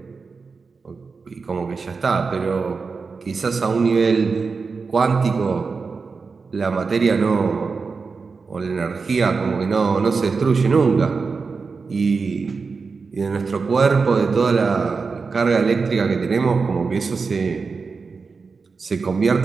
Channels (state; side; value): quieter; left; 4.7 dB